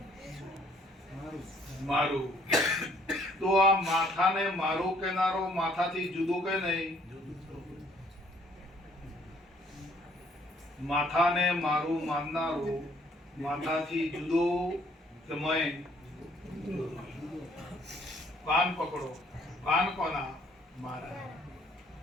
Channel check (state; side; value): normal; both; correlation 0.63